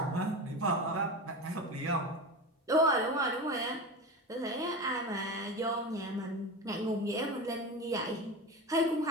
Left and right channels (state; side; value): normal; both; correlation 0.25